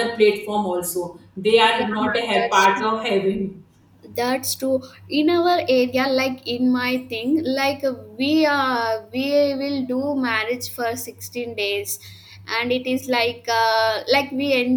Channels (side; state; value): both; identical; correlation 1.00